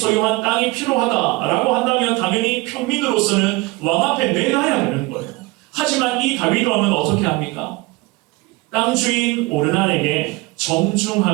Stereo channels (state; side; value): quieter; left; 22.3 dB